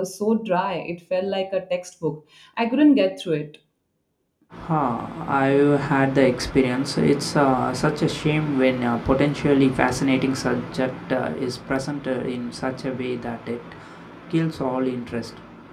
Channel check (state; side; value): identical; both; correlation 1.00